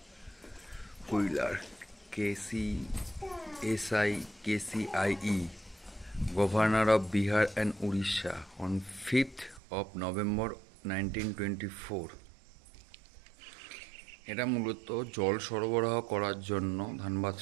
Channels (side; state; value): left; drops out; at 9.6 s